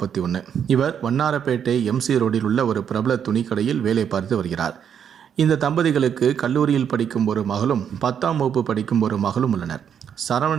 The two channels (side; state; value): left; quieter; 8.2 dB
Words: இவர் வண்ணாரப்பேட்டை MC ரோடில் உள்ள ஒரு பிரபல துணிக்கடையில் வேலை பார்த்து வருகிறார். இந்த தம்பதிகளுக்கு கல்லூரியில் படிக்கும் ஒரு மகளும் 10ஆம் வகுப்பு படிக்கும் ஒரு மகளும் உள்ளனர்.